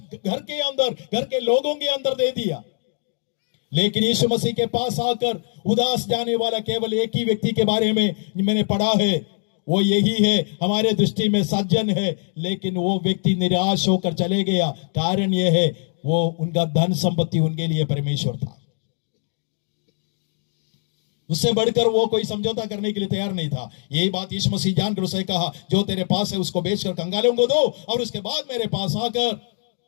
घर के अंदर, घर के लोगों के अंदर दे दिया। लेकिन यीशु मसीह के पास आकर उदास जाने वाला केवल एक ही व्यक्ति के बारे में मैंने पढ़ा है, वो यही है, हमारे दृष्टि में सज्जन है, लेकिन वो व्यक्ति निराश होकर चले गया। कारण यह है, वो उनका धन संपत्ति उनके लिए परमेश्वर था। उससे बढ़कर वो कोई समझौता करने के लिए तैयार नहीं था। यही बात यीशु मसीह जानकर उसे कहा, जो तेरे पास है उसको बेचकर कंगालों को दो, और उसके बाद मेरे पास आकर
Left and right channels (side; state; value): right; silent; digital silence